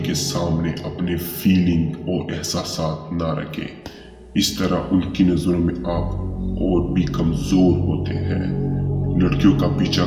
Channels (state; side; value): identical; both; correlation 1.00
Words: सामने अपने फीलिंग और एहसासात ना रखें, इस तरह उनकी नजरों में आप और भी कमजोर होते हैं। लड़कियों का पीछा